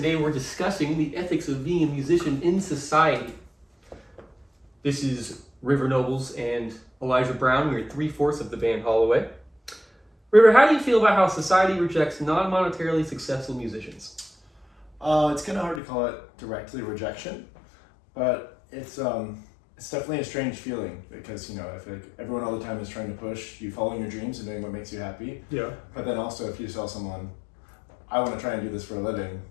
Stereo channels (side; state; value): right; drops out; at 15.8 s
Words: we're discussing the ethics of being a musician in society. This is River Nobles and Elijah Brown. We're 3/4 of the band Holloway. River, how do you feel about how society rejects non-monetarily successful musicians? It's kind of hard to call it directly rejection, but it's definitely a strange feeling because, you know, I feel like everyone all the time is trying to push you following your dreams and doing what makes you happy. Yeah. But then also if you tell someone, I want to try and do this for a living,